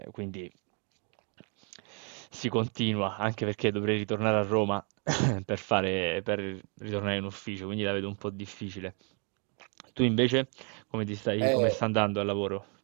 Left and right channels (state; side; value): quieter; left; 37.5 dB